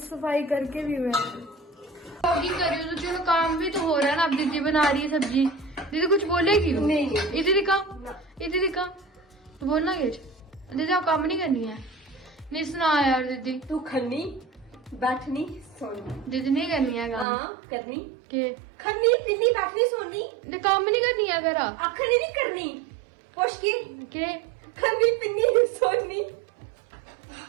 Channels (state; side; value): drops out; left; at 17.2 s